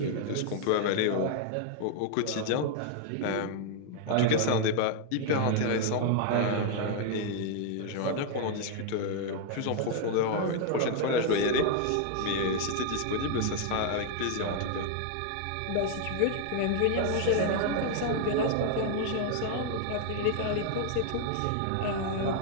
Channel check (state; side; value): different; both; correlation 0.00